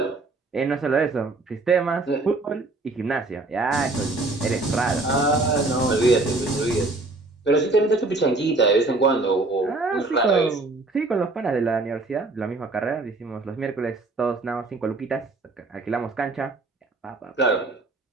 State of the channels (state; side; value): quieter; left; 3.2 dB